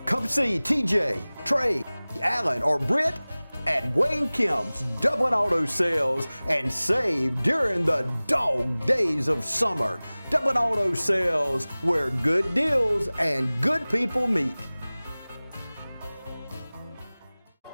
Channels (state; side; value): inverted; both; correlation -0.99